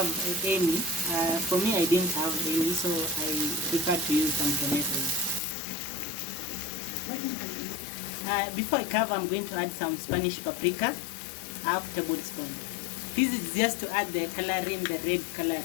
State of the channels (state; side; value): drops out; right; at 5.4 s